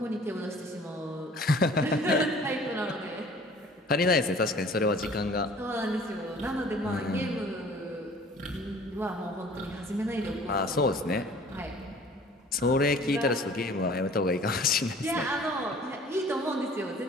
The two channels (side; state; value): both; normal; correlation 0.50